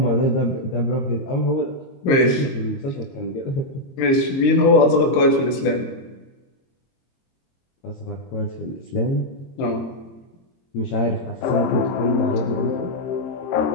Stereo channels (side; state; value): right; late; 22 ms